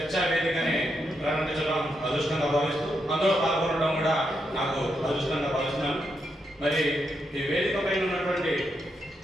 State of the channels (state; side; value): normal; both; correlation 0.82